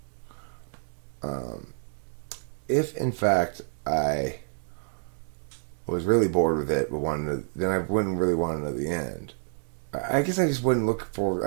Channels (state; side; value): silent; left; digital silence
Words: I was really bored with it, but then I wouldn't really want to know the end. I guess I just wouldn't look forward.